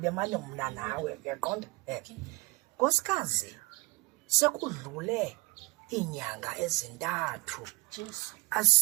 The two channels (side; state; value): left; quieter; 25.6 dB